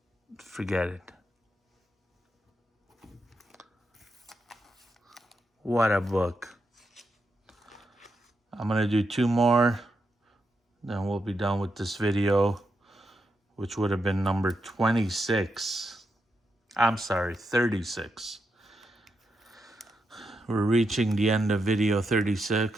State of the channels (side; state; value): both; normal; correlation 0.84